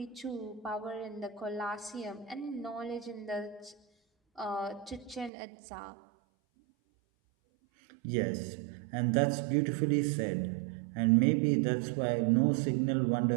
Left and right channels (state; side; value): drops out; left; at 5.3 s